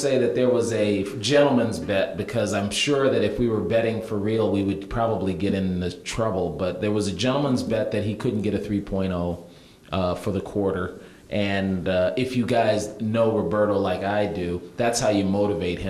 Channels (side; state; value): both; identical; correlation 1.00